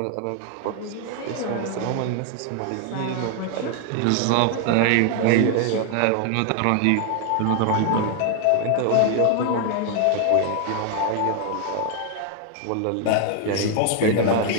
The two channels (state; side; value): different; both; correlation 0.00